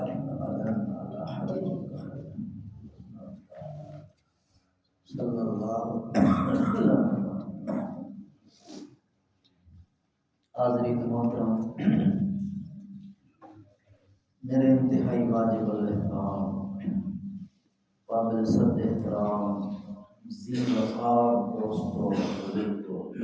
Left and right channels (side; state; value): both; identical; correlation 1.00